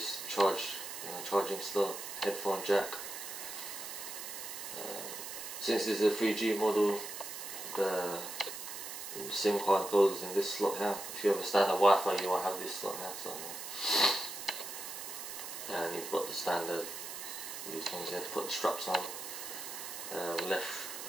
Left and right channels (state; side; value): noise; right; hiss, 8 dB below the sound